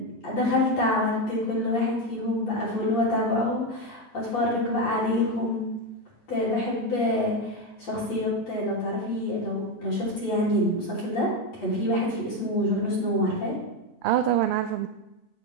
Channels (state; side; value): late; right; 8.4 ms